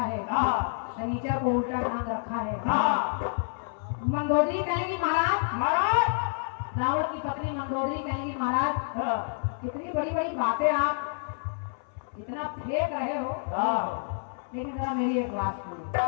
है, शनिचर को उल्टा बांध रखा है। मंदोदरी कहेंगी महाराज, रावण की पत्नी मंदोदरी कहेंगी महाराज, इतनी बड़ी बड़ी बातें आप इतना फेंक रहे हो, लेकिन जरा मेरी एक बात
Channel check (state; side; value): silent; right; 59 dB below the other